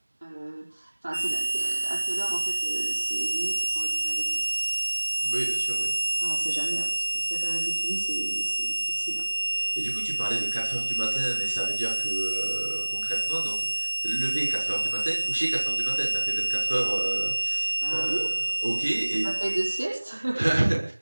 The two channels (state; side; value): inverted; both; correlation -1.00